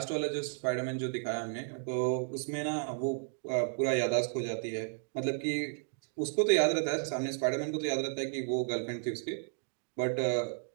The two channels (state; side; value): silent; left; 56 dB below the other